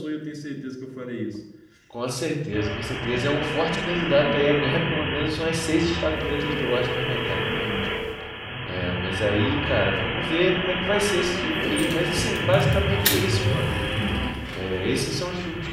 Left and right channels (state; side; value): identical; both; correlation 1.00